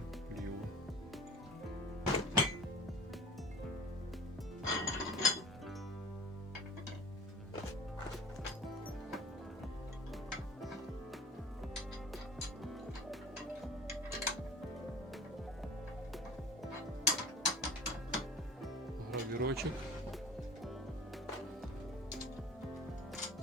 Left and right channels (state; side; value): normal; both; correlation 0.43